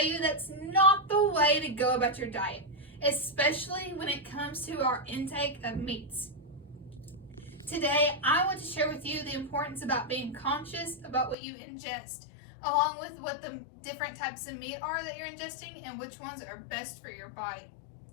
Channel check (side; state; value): right; drops out; at 11.4 s